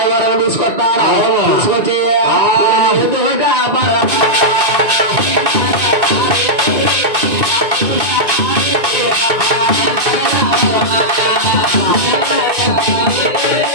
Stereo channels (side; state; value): left; late; 2.5 ms